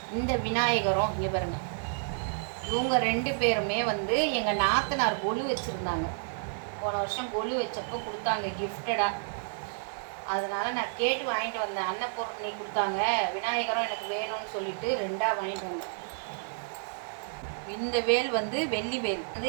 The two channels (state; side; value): silent; left; 58 dB below the other